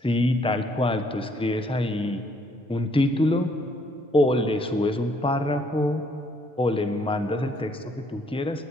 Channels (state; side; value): normal; both; correlation 0.67